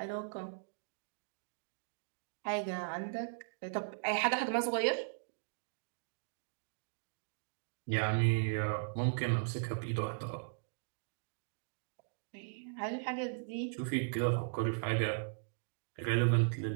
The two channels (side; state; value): left; silent; digital silence